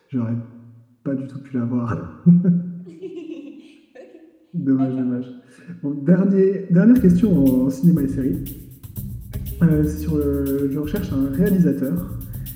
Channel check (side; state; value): both; identical; correlation 1.00